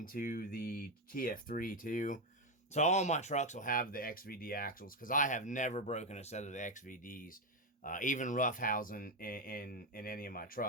the TF3 too. So all my trucks will have the XVD axles, because I have never broken a set of the XVDs. Even roughhousing in any of my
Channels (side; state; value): both; normal; correlation 0.07